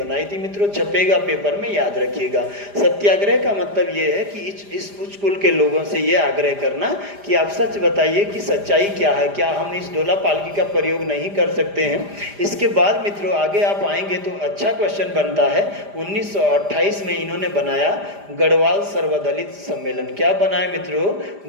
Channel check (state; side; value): late; left; 5.0 ms